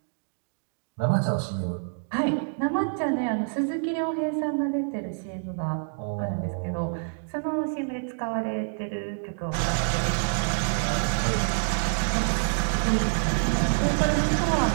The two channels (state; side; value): silent; left; digital silence